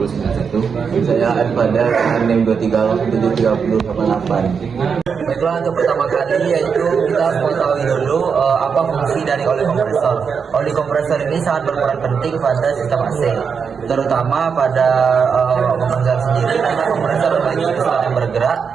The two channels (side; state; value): left; quieter; 6.2 dB